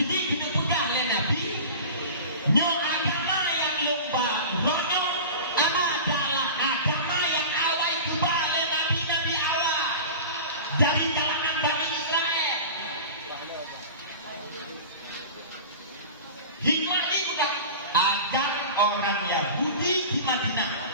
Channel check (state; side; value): inverted; both; correlation -0.34